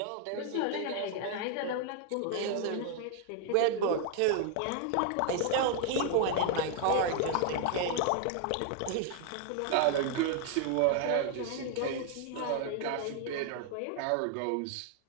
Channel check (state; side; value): different; both; correlation 0.00